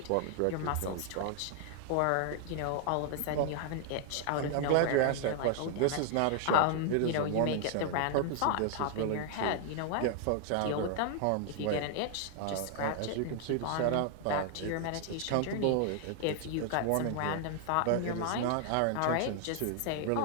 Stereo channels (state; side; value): different; both; correlation 0.00